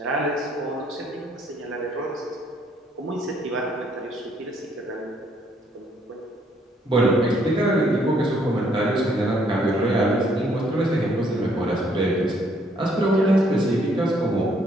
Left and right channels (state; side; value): normal; both; correlation 0.67